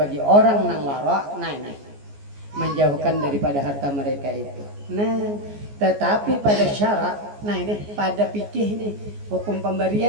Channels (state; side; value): late; left; 14 ms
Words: orang nang wara nih menjauhkan daripada harta mereka itu. Nah, tetapi pada syarak, nah ini pada fikih nih hukum